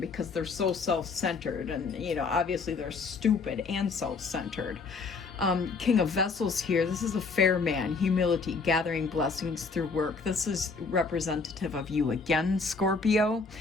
they're so self-centered, and you know, obviously they're stupid and self-centered. King of Vessels here, this is a fair man, humility, gathering blessings through work. This is representative of you again, Scorpio.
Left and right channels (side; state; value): right; quieter; 4.5 dB